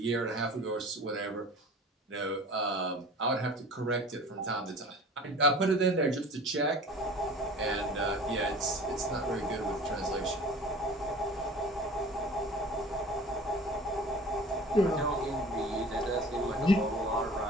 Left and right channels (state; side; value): normal; both; correlation 0.42